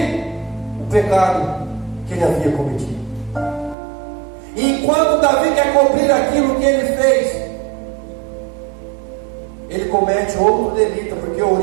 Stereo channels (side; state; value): left; drops out; at 3.8 s